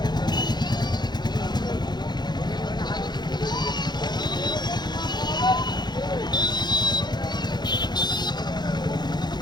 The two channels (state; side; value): late; right; 0.21 ms